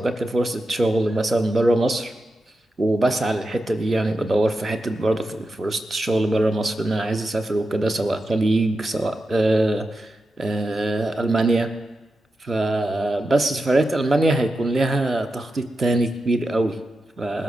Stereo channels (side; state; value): both; normal; correlation 0.90